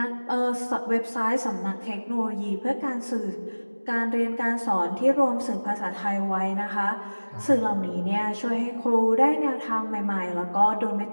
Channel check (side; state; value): both; inverted; correlation -1.00